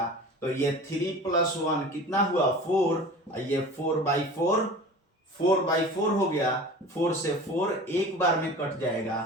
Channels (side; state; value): both; normal; correlation 0.38